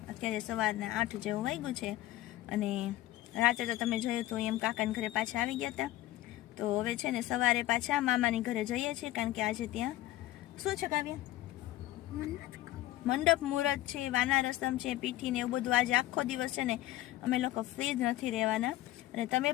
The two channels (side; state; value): right; quieter; 15.4 dB